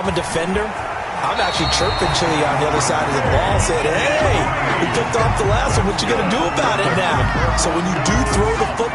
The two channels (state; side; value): identical; both; correlation 1.00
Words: a defender, I'm actually chirping Chili on the other side of the ball, saying, hey, we picked off the last one. What you going to do about it now? So when you do throw the